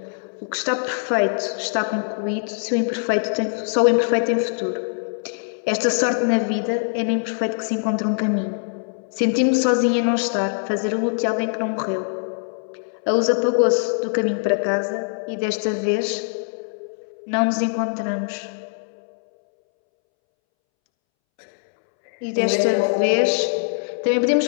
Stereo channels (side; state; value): right; silent; 64 dB below the other